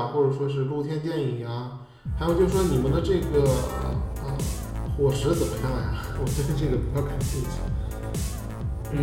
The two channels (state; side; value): identical; both; correlation 1.00